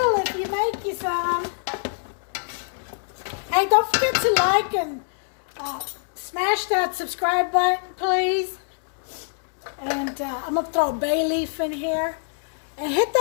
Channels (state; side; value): silent; right; digital silence